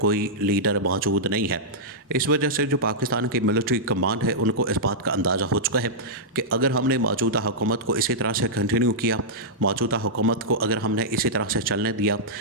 کوئی لیڈر موجود نہیں ہے۔ اس وجہ سے جو پاکستان کی ملٹری کمانڈ ہے ان کو اس بات کا اندازہ ہو چکا ہے کہ اگر ہم نے موجودہ حکومت کو اسی طرح سے کنٹینیو کیا، موجودہ حکومت کو اگر ہم نے اسی طرح سے چلنے دیا،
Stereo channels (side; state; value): both; normal; correlation -0.10